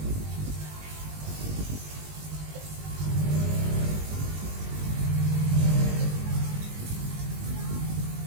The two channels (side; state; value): left; late; 20 ms